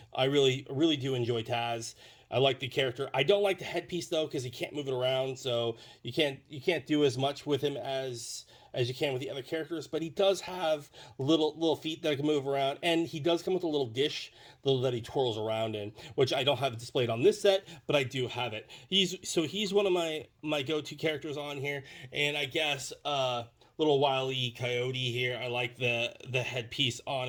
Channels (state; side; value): identical; both; correlation 1.00